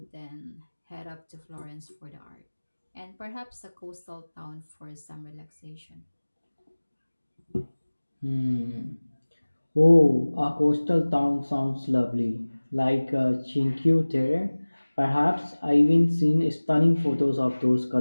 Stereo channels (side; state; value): both; inverted; correlation -1.00